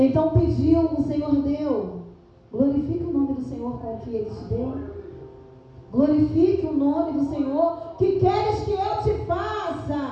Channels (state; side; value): identical; both; correlation 1.00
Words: pediu, o Senhor deu. Glorifique o nome do Senhor com o que Ele te deu. Glorifique o nome do Senhor. Que queres que eu te